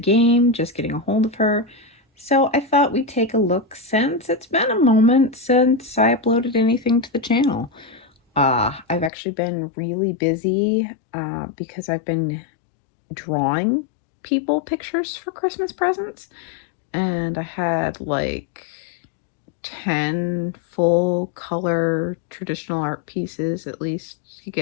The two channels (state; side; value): drops out; right; at 9.1 s